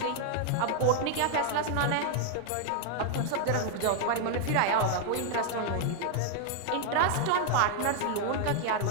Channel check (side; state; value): both; different; correlation 0.00